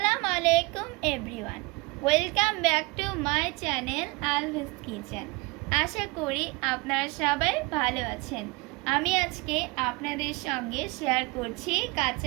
আলাইকুম everyone, welcome back to my channel Alvi's kitchen. আশা করি আপনারা সবাই ভালো আছেন। আমি আজকে আপনাদের সঙ্গে শেয়ার করছি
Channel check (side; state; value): left; quieter; 26.0 dB